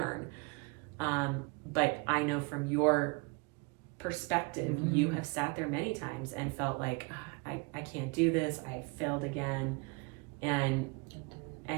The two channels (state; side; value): quieter; left; 29.7 dB